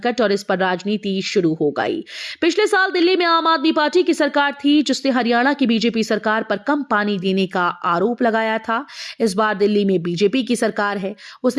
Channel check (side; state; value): both; identical; correlation 1.00